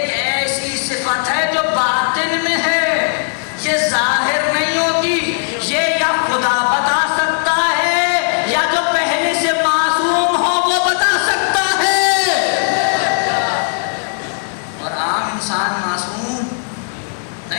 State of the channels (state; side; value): silent; right; digital silence